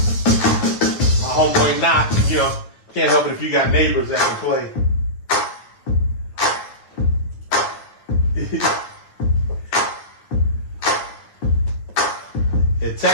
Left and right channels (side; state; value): right; late; 9.7 ms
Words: my homeboy Knox, you know, can't help it if you got neighbors that can play. And